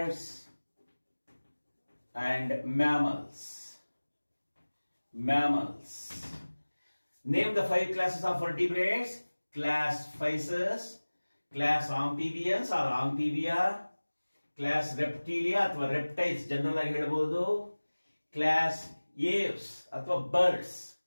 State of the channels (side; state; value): both; inverted; correlation -1.00